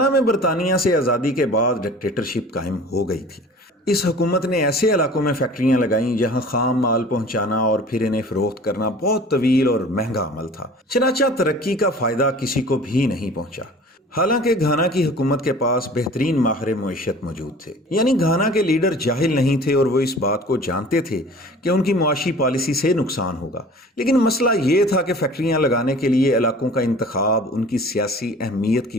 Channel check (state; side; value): normal; both; correlation 0.45